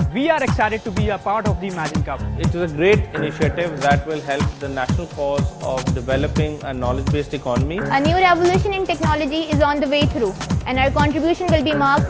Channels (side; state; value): both; identical; correlation 1.00